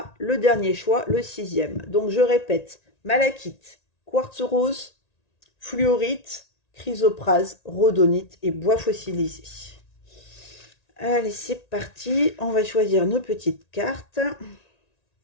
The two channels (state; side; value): late; right; 1.9 ms